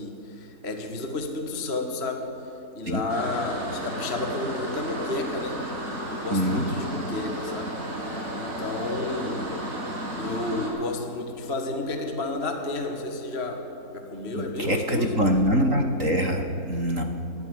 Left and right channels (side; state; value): left; late; 3.8 ms